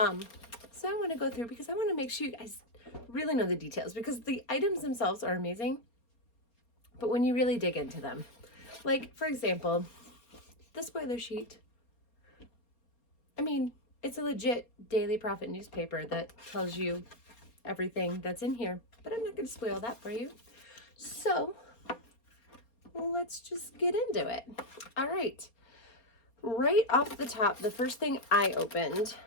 I want to go through because I want to make sure you guys really know the details because the items themselves are amazing. But when you really dig into them, like, for example, the spoiler sheet. I mean, it's a legit Daily Prophet newspaper that tells you everything that's in here, but I'm not going to spoil that for you. So let's just get into it. All right. Right off the top, the first thing I opened,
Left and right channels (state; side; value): late; right; 4.3 ms